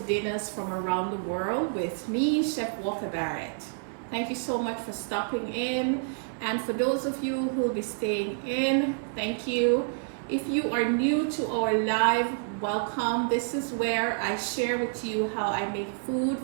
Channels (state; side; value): silent; left; 59 dB below the other